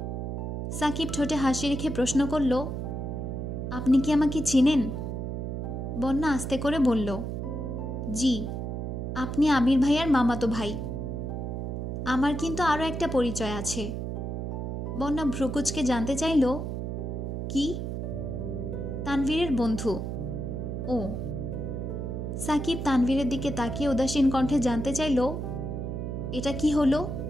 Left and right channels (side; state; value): right; noise; hum, 4 dB below the sound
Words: সাকিব ঠোঁটে হাসি রেখে প্রশ্ন করল, আপনি কি আমাকে চিনেন? বন্যা আস্তে করে বলল, জি, আপনি আবির ভাইয়ার মামাতো ভাই। আমার কিন্তু আরও একটা পরিচয় আছে। বন্যা ভ্রুকুচকে জানতে চাইল, কি? তানভীরের বন্ধু। ও। সাকিব তানভীরের দিকে তাকিয়ে উদাসীন কণ্ঠে জানতে চাইল, এটা কি হলো?